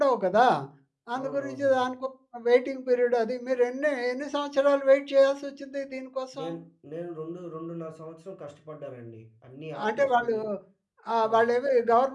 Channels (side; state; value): both; identical; correlation 1.00